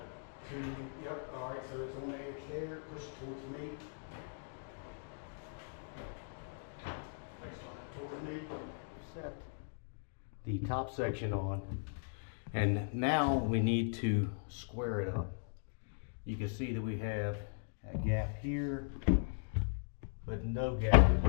yep, all right, so it's on the edge there, push it towards me. Towards me. Set the top section on, and now we need to square it up. You can see that we have a gap here but no gap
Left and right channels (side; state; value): right; silent; digital silence